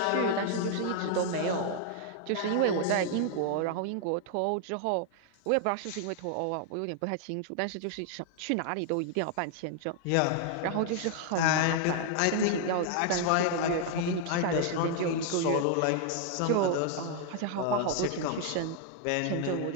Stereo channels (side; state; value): both; different; correlation 0.00